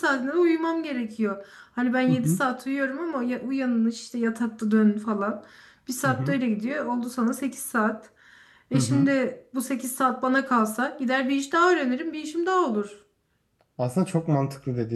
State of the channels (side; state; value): both; identical; correlation 1.00